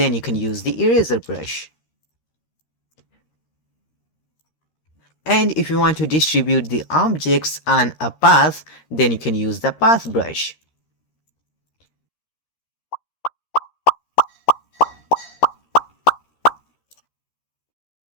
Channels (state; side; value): late; right; 13 ms